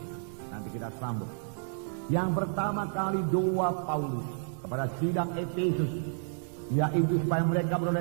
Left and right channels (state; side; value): silent; left; digital silence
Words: Nanti kita sambung. Yang pertama kali doa Paulus kepada sidang Efesus, yaitu supaya mereka